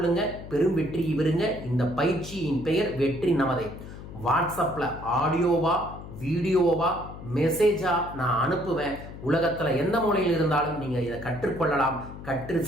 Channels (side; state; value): left; noise; hum, 13 dB below the sound